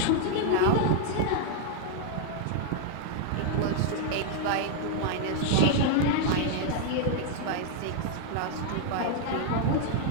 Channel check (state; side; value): different; both; correlation -0.01